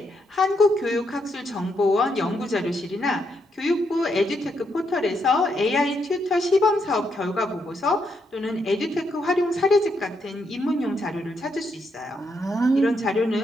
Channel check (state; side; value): normal; both; correlation 0.78